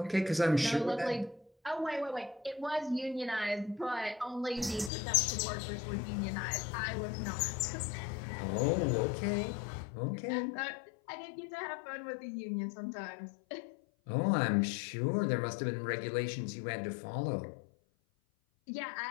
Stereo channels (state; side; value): drops out; right; at 4.9 s